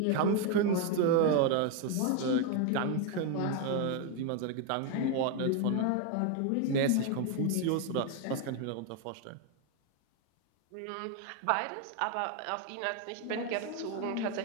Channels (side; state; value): both; different; correlation 0.01